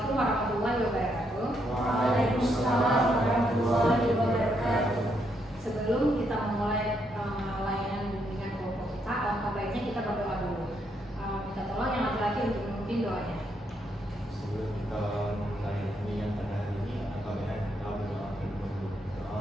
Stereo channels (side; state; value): both; normal; correlation 0.76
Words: warahmatullahi wabarakatuh. Waalaikumsalam warahmatullahi wabarakatuh. Sebelum kita memulai layanan bimbingan kelompok kita, alangkah baiknya kita berdoa dulu. Minta tolong yang laki-laki untuk memimpin doanya. Sebelum kita memulai bimbingan pada hari ini, alangkah baiknya kita berdoa dulu. Doa